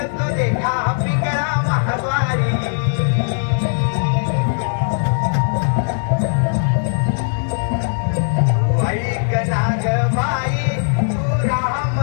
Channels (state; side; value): silent; right; digital silence